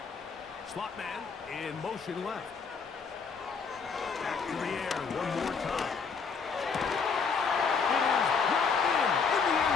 Slot man in motion left. Back to the air one more time. It is brought in the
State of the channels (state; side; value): quieter; right; 5.5 dB